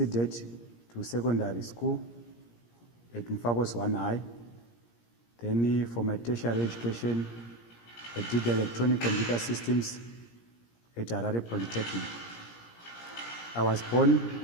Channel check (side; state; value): right; late; 17 ms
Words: to secondary school at Mfakose 1 High. Then for my tertiary education, I did electronic computer systems at Harare Polytechnic. I was born